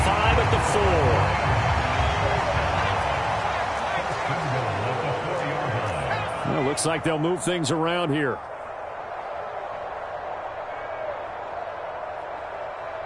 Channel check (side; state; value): both; identical; correlation 1.00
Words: at the 4. Well, looks like they'll move things around here.